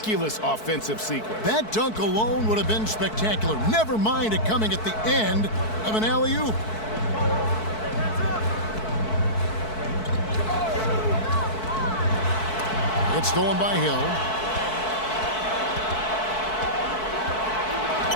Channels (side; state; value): right; late; 4.6 ms